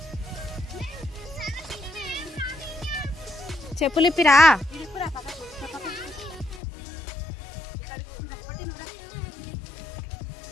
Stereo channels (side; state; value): right; drops out; at 6.6 s